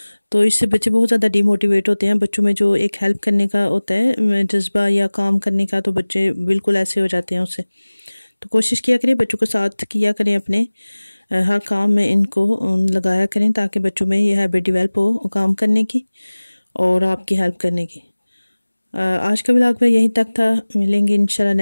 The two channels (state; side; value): inverted; both; correlation -1.00